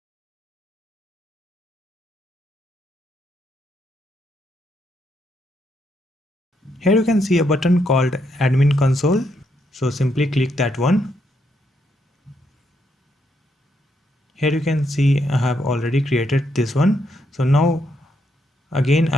Here you can see a button called admin console. So simply click that one. Here you can see I have already created this one. So now again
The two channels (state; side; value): normal; both; correlation 0.78